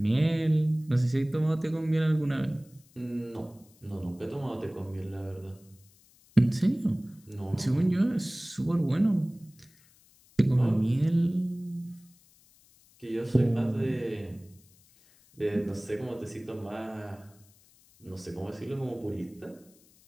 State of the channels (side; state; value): left; noise; hiss, 29 dB below the sound